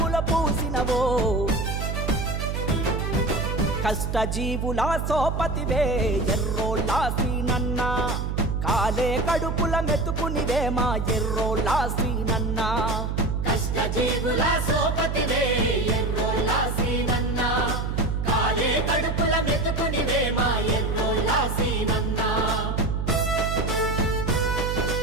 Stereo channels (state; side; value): noise; right; hum, 2 dB below the sound